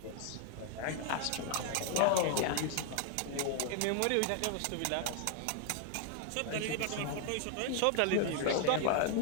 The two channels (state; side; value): different; both; correlation 0.00